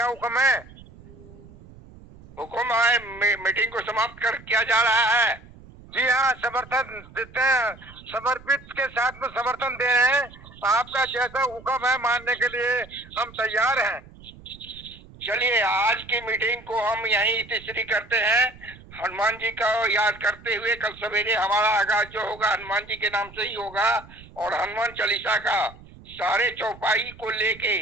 हुक्म है? हुक्म है, मीटिंग को समाप्त कर किया जा रहा है। जी हाँ, समर्थन देते हैं, समर्पित के साथ में समर्थन दे रहे हैं। आपका जैसा हुक्म है मानने के लिए हम तैयार हैं। चलिए, आज की मीटिंग को हम यहीं तीसरी करते हैं। हनुमान जी का याद करते हुए कल सवेरे हमारा आगाज जो होगा हनुमान जी के नाम से ही होगा, और हनुमान चालीसा का सारे चौपाई को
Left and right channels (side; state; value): right; noise; rumble, 21 dB below the sound